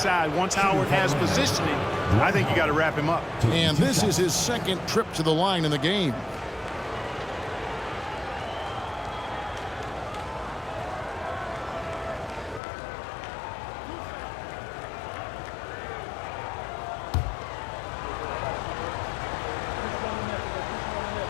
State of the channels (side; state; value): right; drops out; at 12.6 s